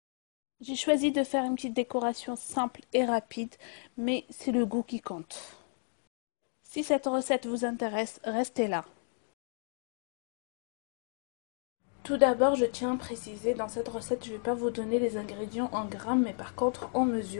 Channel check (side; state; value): right; silent; 56 dB below the other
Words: J'ai choisi de faire une petite décoration simple et rapide, mais c'est le goût qui compte. Si cette recette vous intéresse, restez là. Tout d'abord, je tiens à préciser, dans cette recette, je ne vais pas vous donner les ingrédients en grammes, mais par contre en